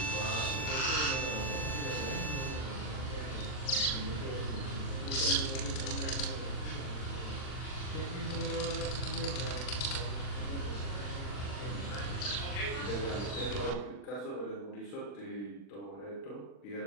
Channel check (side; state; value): right; late; 40 ms